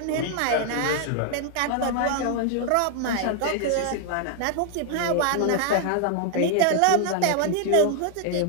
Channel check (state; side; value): different; both; correlation 0.00